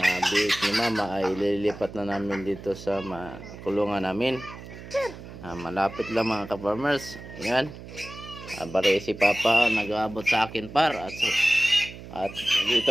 biik ni mama ay lilipat na namin dito sa kulungan namin. Malapit lang mga ka-farmers. Ayan, bari si papa nag-aabot sa akin par at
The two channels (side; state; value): right; noise; hum, 14 dB below the sound